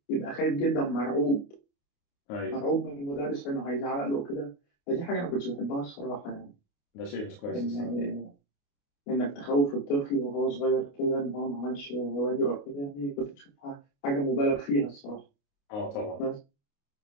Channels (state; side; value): late; right; 29 ms